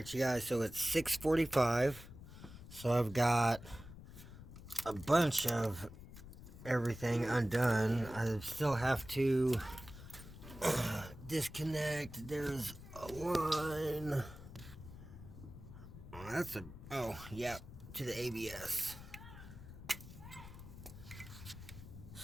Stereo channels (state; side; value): noise; left; rumble, 15 dB below the sound